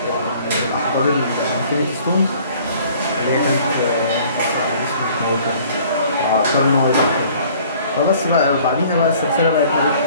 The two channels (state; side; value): inverted; both; correlation -0.54